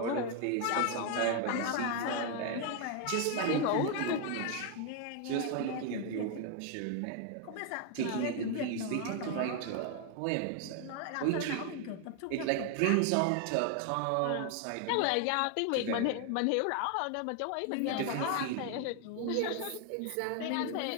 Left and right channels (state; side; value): different; both; correlation 0.00